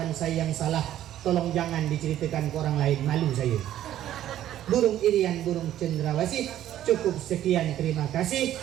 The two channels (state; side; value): quieter; left; 12.3 dB